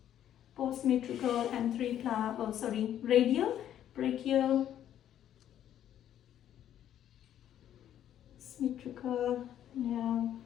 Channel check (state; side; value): quieter; right; 10.9 dB